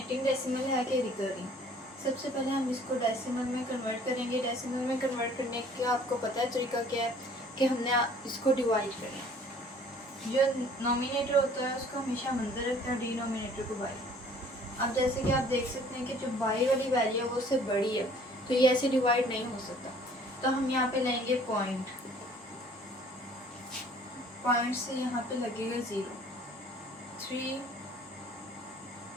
डेसिमल है कि रिकरिंग। सबसे पहले हम इसको डेसिमल में कन्वर्ट करेंगे। डेसिमल में कन्वर्ट करने का आपको पता है तरीका क्या है कि हमने इसको डिवाइड करें। जो नोमिनेटर होता है उसको हमेशा हम अंदर रखते हैं, डिनोमिनेटर को बाई। अब जैसे कि आप देख सकते हैं कि जो बाई वाली वैल्यू है वो उससे बड़ी है, तो ये ऐसे डिवाइड नहीं हो सकता। तो हम यहाँ पे लेंगे पॉइंट, पॉइंट से यहाँ पे लगेगा 0, 3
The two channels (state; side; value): normal; both; correlation 0.54